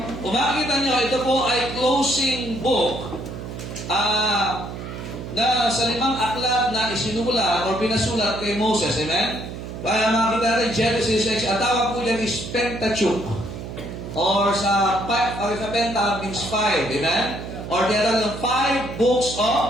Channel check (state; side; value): noise; right; hum, 9 dB below the sound